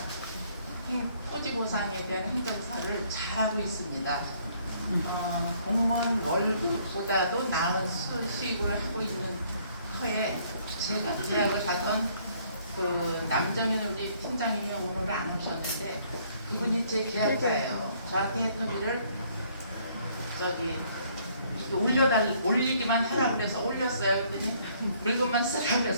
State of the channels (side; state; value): both; inverted; correlation -0.64